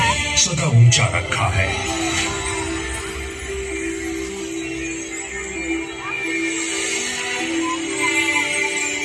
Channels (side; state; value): both; identical; correlation 1.00